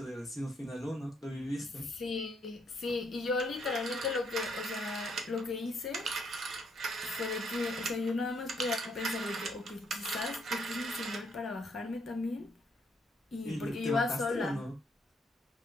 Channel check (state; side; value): normal; both; correlation 0.72